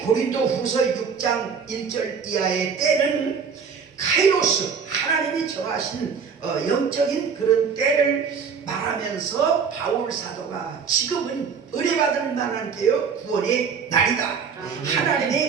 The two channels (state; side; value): quieter; left; 6.1 dB